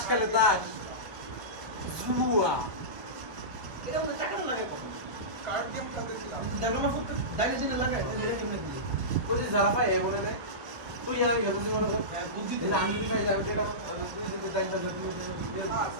খেলে তাস জুয়া এটা আমরা চাকানো লাগে কার্ড গেম খেলতেছিলাম দেখানো করতে ডাইনে ডাইনে লাগায় তাহলে এটা কেমনে দিই ওই যে যারা পায় এ বলে রে তুই আমি যত দিন মনে কর হ্যাঁ বুঝছি তো দিন আমি যদি পাই যাবে এটা তুই যদি টাইম থাকে তুমি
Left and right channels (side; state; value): left; late; 1.1 ms